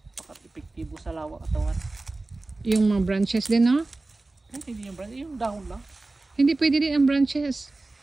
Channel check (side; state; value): left; quieter; 3.2 dB